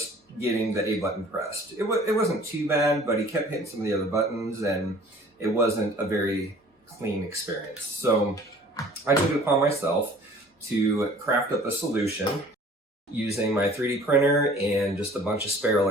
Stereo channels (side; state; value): both; normal; correlation 0.50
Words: getting the A button pressed. It wasn't too bad, but he kept hitting some of the other buttons and it wasn't a very clean experience. So I took it upon myself to craft up a solution using my 3D printer and just a bunch of spare